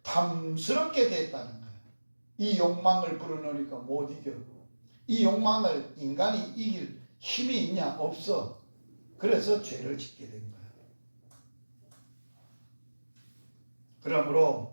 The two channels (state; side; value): inverted; both; correlation -1.00